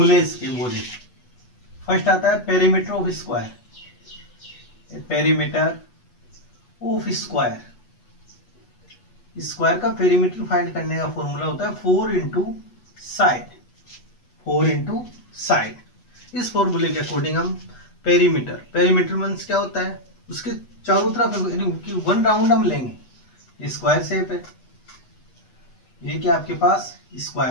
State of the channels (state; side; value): late; right; 8.1 ms